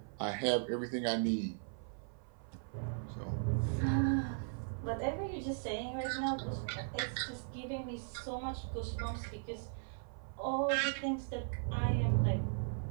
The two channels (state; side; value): silent; left; 53 dB below the other